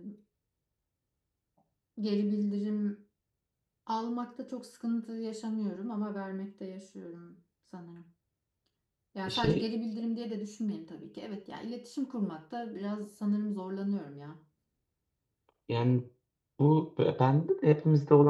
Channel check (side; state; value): both; identical; correlation 1.00